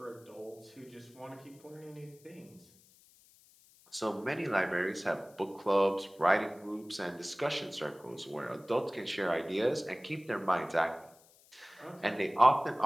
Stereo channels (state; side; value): noise; left; hiss, 27 dB below the sound